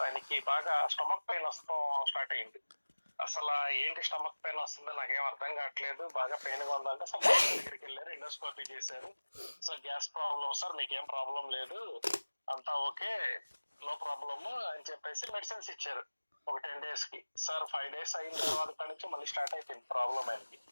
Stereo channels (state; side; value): inverted; both; correlation -1.00